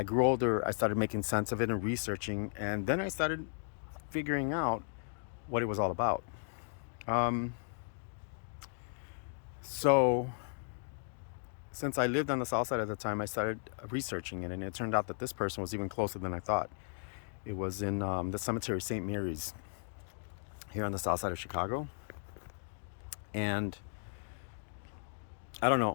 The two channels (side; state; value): right; silent; digital silence